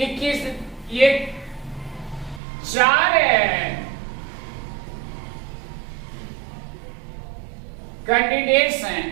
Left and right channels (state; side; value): drops out; left; at 2.4 s